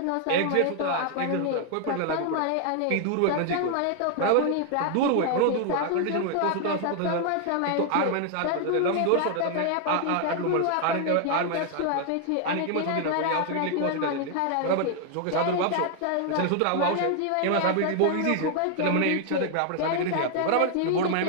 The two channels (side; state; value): both; different; correlation 0.00